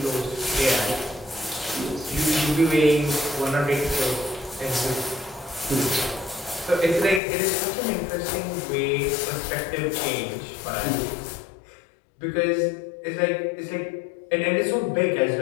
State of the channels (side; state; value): right; drops out; at 7.2 s